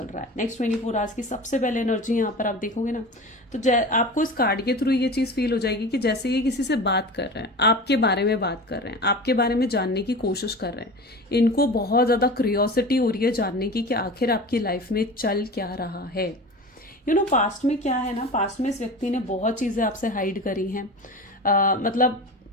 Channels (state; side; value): normal; both; correlation 0.33